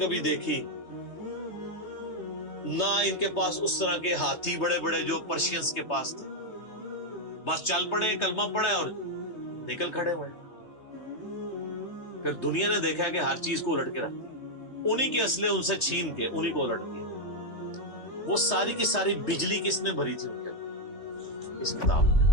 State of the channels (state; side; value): late; right; 3.3 ms